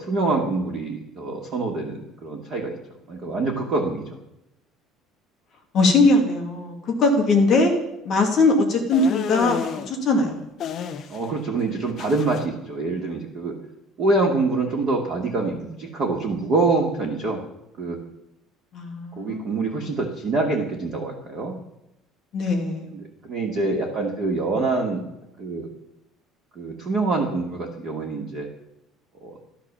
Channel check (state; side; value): normal; both; correlation 0.48